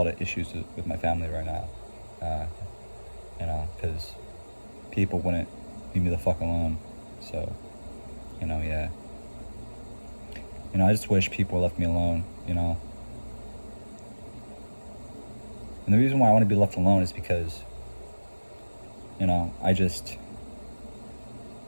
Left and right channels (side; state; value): both; inverted; correlation -1.00